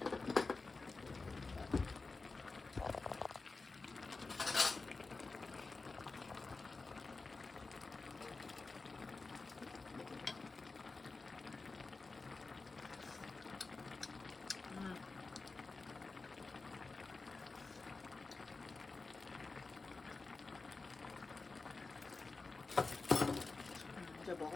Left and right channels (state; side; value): quieter; right; 3.8 dB